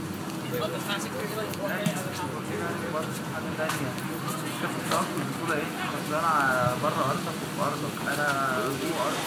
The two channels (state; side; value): identical; both; correlation 1.00